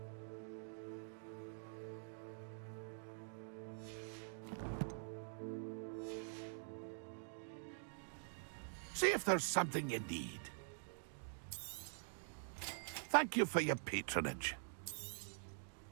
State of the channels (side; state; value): left; silent; digital silence